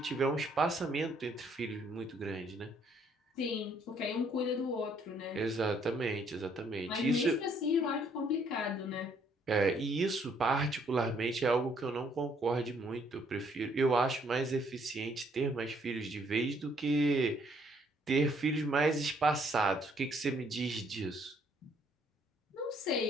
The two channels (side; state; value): both; normal; correlation 0.67